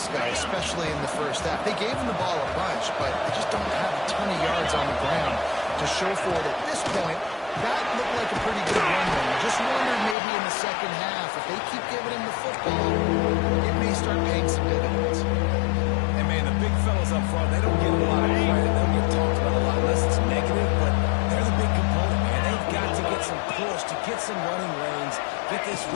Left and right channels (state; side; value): drops out; right; at 10.2 s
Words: guy, especially in the first half. They gave him the ball a bunch, but they just don't have a ton of yards on the ground to show for it at this point. That looked like a pretty good run there. I just wondered maybe in the second half, if they keep giving him the football, it may start paying some dividends. And man, the big fellas up front, they don't get a lot of credit. They don't get talked about a lot unless it's negative, but they're the big component, man. They've got to get some push, to get some running lanes, get this